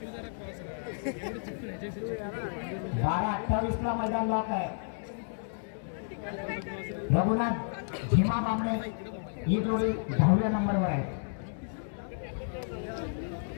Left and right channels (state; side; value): silent; right; digital silence